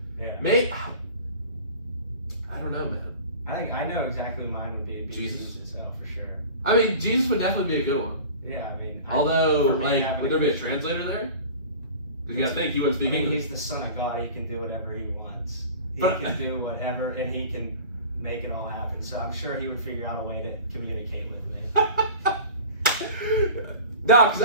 Yeah. Maybe I don't know, man. I think I know exactly mine would be Jesus itself for sure. I mean, Jesus would definitely be a good one. Yeah, I mean. Although, like, would there be a translator there? Because you gotta think he wouldn't speak English. He's the Son of God. He can do whatever he wants. He can do whatever, and he can make it all happen. So I'm sure he would figure out a way to communicate with me. No, because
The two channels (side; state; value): both; inverted; correlation -0.38